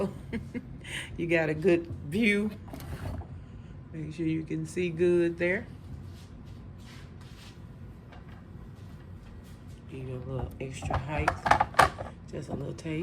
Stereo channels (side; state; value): both; identical; correlation 1.00